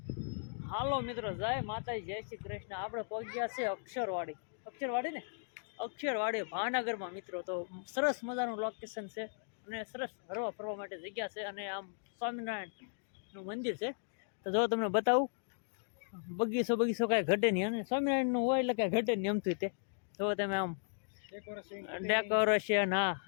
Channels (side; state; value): right; silent; digital silence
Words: હાલો મિત્રો, જય માતાજી, જય શ્રી કૃષ્ણ. આપણે પહોંચ્યા છે અક્ષરવાડી ને અક્ષરવાડી ભાવનગરમાં મિત્રો. તો સરસ મજાનું લોકેશન છે અને સરસ હરવા ફરવા માટે જગ્યા છે. અને આમ સ્વામિનારાયણનું મંદિર છે. તો જો તમને બતાવું, બગીચો કાંઈ ઘટે નહીં. અને સ્વામિનારાયણનું હોય એટલે કાંઈ ઘટે નહીં એમથી. તે જો તમે આમ ડેકોરેશન, હા,